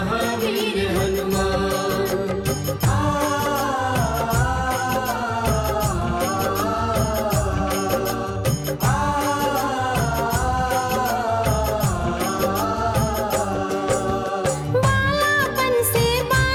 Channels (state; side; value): identical; both; correlation 1.00